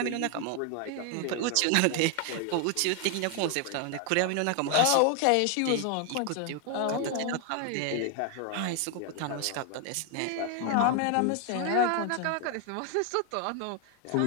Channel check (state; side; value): different; both; correlation 0.00